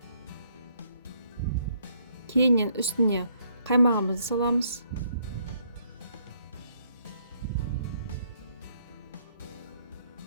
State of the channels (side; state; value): both; inverted; correlation -0.70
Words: Кейіннен үстіне қаймағымызды саламыз.